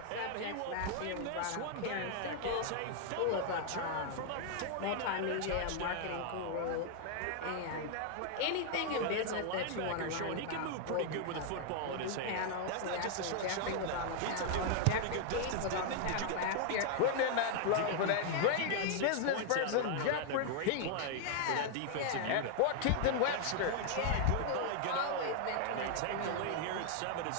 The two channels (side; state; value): both; different; correlation 0.00